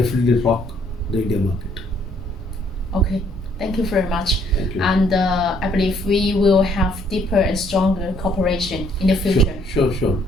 rock the India market. Okay, thank you very much. Thank you. And I believe we will have deeper and stronger cooperation in the future. Sure.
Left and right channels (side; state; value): both; normal; correlation 0.65